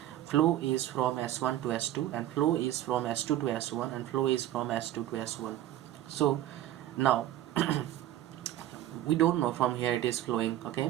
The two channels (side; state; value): left; quieter; 13.0 dB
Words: Flow is from S1 to S2, and flow is from S2 to S1, and flow is from S2 to S1. So now we don't know from here it is flowing. Okay,